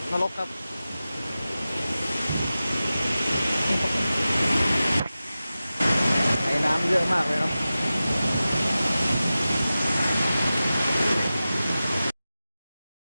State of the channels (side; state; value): both; inverted; correlation -0.95